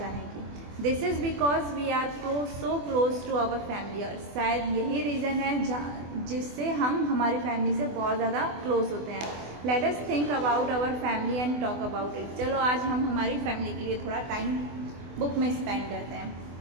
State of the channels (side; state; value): left; late; 24 ms